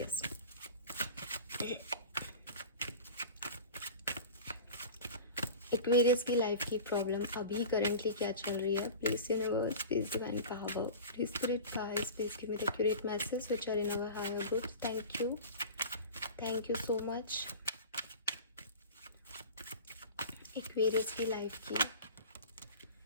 एक्वेरियस की लाइफ की प्रॉब्लम अभी करेंटली क्या चल रही है। Please universe, please divine power, please spirit guides, please give me the accurate message which are in our higher groups. Thank you so much. Aquarius की life की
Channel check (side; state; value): both; inverted; correlation -0.35